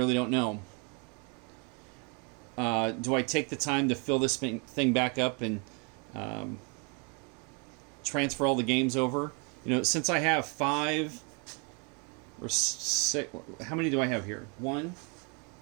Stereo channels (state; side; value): quieter; left; 33.7 dB